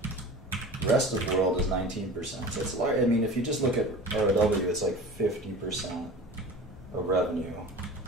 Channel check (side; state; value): both; normal; correlation 0.37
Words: Rest of the world is 19%. So it's large. I mean, if you just look at ROW, it's like 50% of revenue